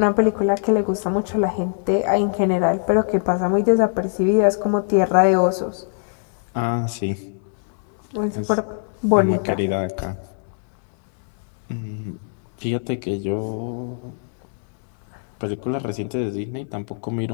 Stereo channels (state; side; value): silent; right; 64 dB below the other